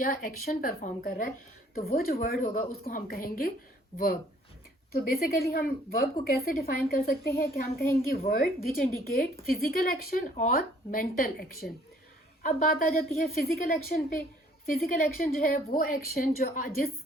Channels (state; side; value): normal; both; correlation 0.59